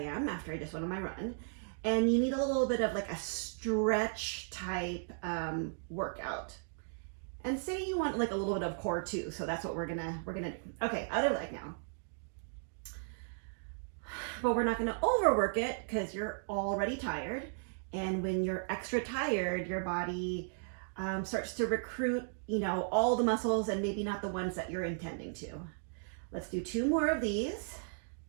am after I just went on my run, and you need a little bit of like a stretch type workout. And say you want like a little bit of core too, so that's what we're gonna do. Okay, other leg now. But we're not gonna overwork it because you're already tired. And when you're extra tired, your body starts to recruit, all the muscles and maybe not the ones that you're intending to. Let's do 2 more of these.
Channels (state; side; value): silent; left; digital silence